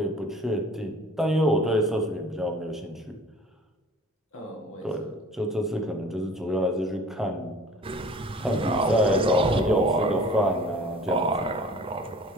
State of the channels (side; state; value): both; normal; correlation 0.46